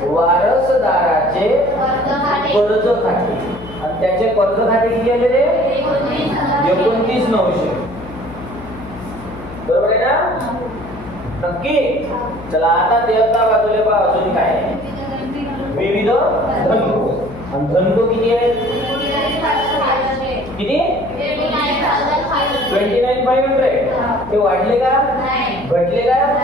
वारसदाराचे कर्ज खाते. आणि त्याचे कर्ज खाते किती आले रे? 29,900. बरोबर आहे ना? नक्की. चला आता देवता बाजूला पहा अजून काय आहे. विविध धनको. आणि धनको किती आहेत? किती? 29,500. ते वाढले का? घटले का?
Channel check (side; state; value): left; noise; hum, 14 dB below the sound